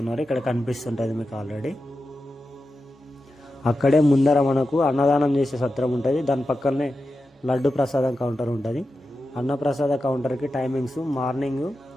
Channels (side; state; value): both; normal; correlation 0.91